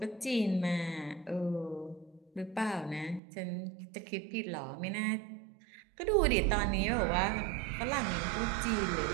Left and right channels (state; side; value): drops out; left; at 3.2 s